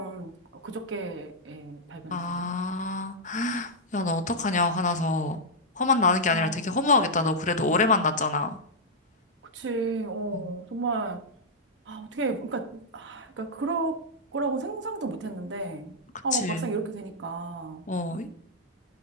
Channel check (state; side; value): normal; both; correlation -0.06